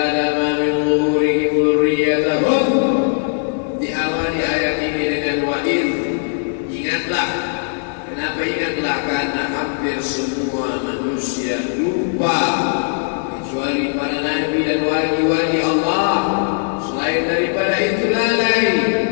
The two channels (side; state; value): right; silent; digital silence